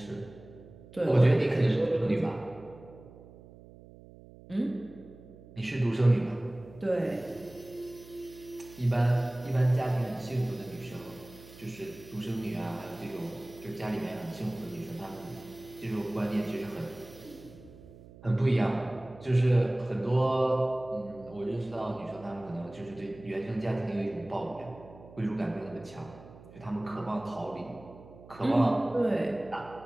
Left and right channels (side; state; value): right; noise; hum, 20 dB below the sound